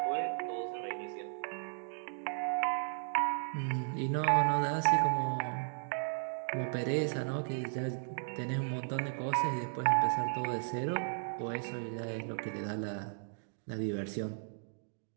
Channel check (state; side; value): silent; left; digital silence